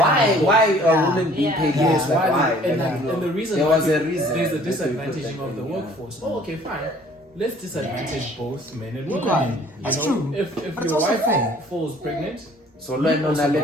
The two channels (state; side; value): normal; both; correlation 0.54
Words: are women being paid less? Like, why? And the reason there why was a reason. there's a disadvantaging of the workforce. Oh, okay, fine. Let's disadvantage both men and women. You That's know, true. if But it's your also wife fair. falls pregnant, So learn on a